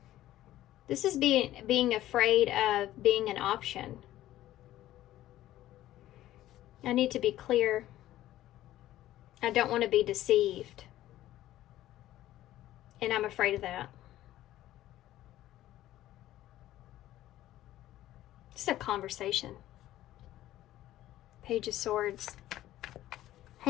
This is being afraid of being an option. I need to be clear. I don't want to be deceived. And I'm afraid of that. It's a conversation. Page of Swords.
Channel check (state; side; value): quieter; right; 14.2 dB